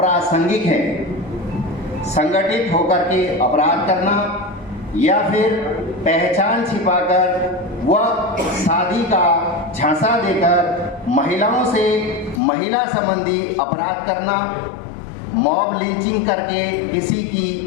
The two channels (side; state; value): right; drops out; at 12.4 s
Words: है। संगठित होकर के अपराध करना या फिर पहचान छिपाकर व शादी का झांसा देकर महिलाओं से महिला संबंधी अपराध करना, मॉब लिंचिंग करके किसी